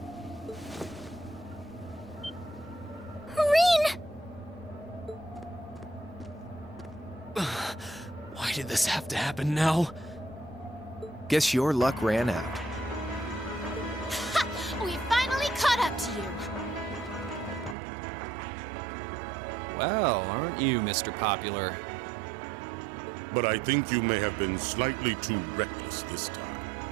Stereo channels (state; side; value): drops out; left; at 17.8 s